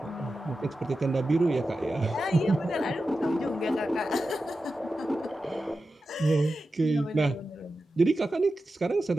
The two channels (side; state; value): both; normal; correlation 0.92